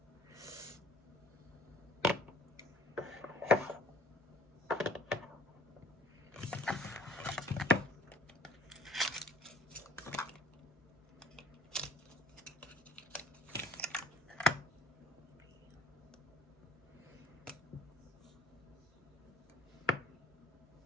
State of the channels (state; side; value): normal; both; correlation 0.56